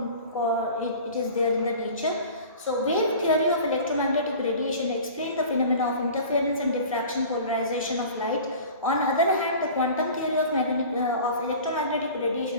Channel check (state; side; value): inverted; both; correlation -0.41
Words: it is there in the nature. So, wave theory of electromagnetic radiation explains the phenomena of interference and diffraction polarization of light. On the other hand, the quantum theory of electromagnetic